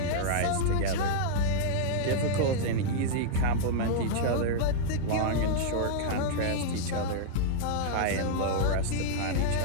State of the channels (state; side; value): different; both; correlation -0.01